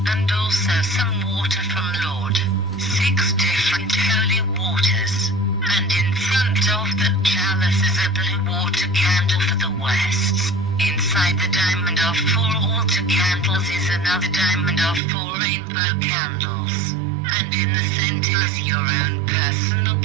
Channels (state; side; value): drops out; left; at 15.0 s